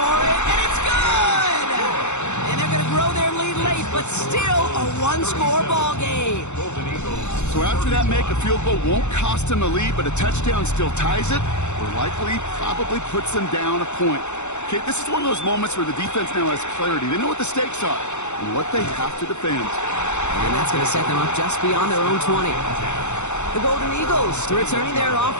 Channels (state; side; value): late; right; 0.83 ms